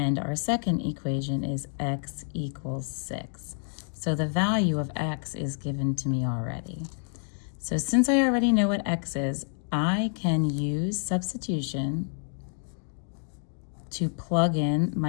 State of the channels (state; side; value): silent; right; digital silence